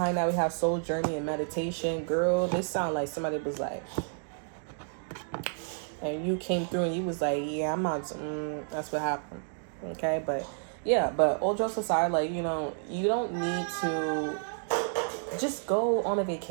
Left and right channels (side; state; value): left; silent; digital silence